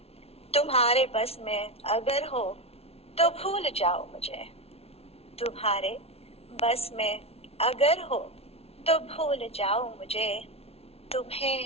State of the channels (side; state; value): right; late; 0.30 ms